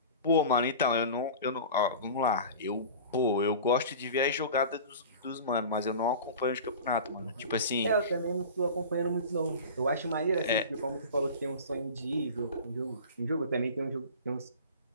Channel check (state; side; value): inverted; both; correlation -0.36